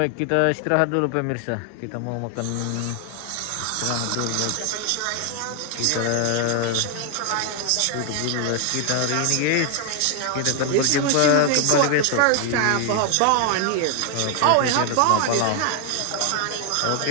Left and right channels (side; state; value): both; different; correlation 0.01